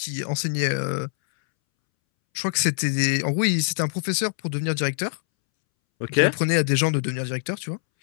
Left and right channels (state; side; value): silent; right; 63 dB below the other